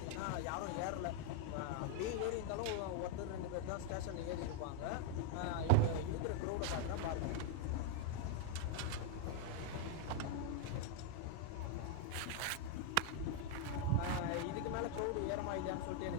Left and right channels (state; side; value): different; both; correlation 0.00